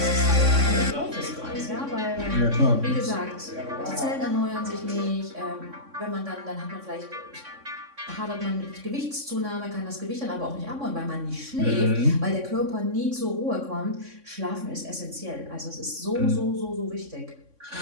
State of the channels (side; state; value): left; late; 3.6 ms